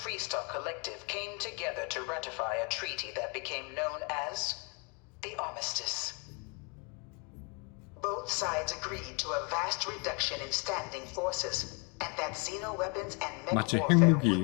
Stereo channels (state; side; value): quieter; right; 33.3 dB